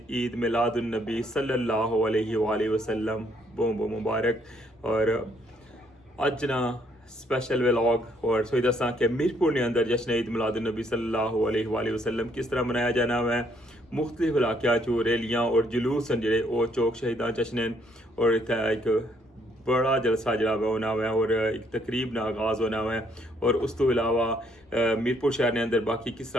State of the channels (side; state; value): both; normal; correlation 0.69